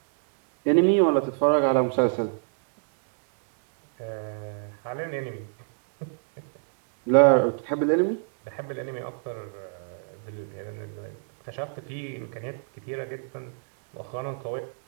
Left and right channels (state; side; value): silent; left; digital silence